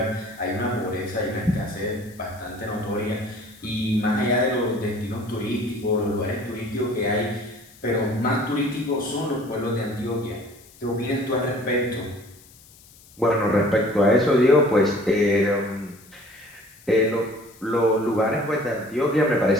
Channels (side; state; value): left; noise; hiss, 25 dB below the sound